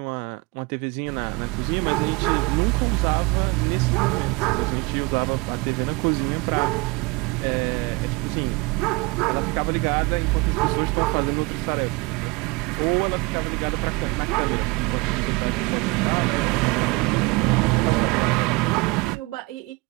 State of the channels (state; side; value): quieter; left; 25.9 dB